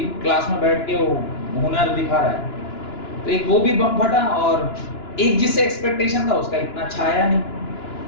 क्लास में बैठ के वो हुनर दिखा रहा है। तो एक वो भी बम फटा, और एक जिससे एक्सपेक्टेशन था उसका इतना छाया नहीं,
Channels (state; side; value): late; right; 2.9 ms